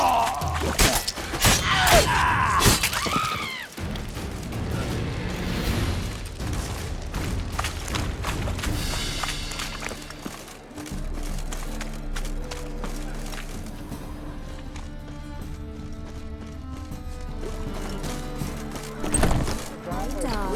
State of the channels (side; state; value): both; identical; correlation 1.00